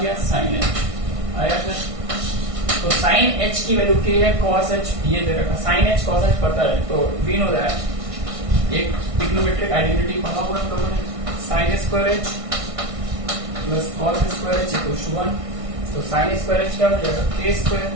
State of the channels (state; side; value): late; left; 1.6 ms